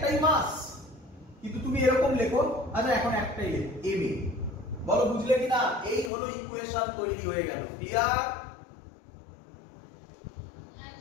মাস, কিন্তু তুমি এরকম লেখো, আচ্ছা এখন একটাই লেখো ma। বলো বুঝলে কি না? এই হলো ইকুয়েশন তৈরি হয়ে গেল। ক্লিয়ার?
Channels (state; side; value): drops out; right; at 6.1 s